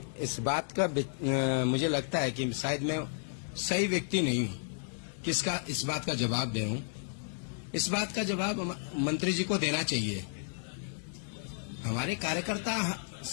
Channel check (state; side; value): silent; right; digital silence